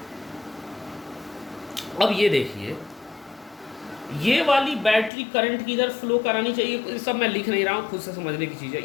अब ये देखिए, ये वाली बैटरी करंट की इधर फ्लो करानी चाहिए, ये सब मैं लिख नहीं रहा हूँ, खुद से समझने की चीज़ है।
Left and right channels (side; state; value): right; drops out; at 5.1 s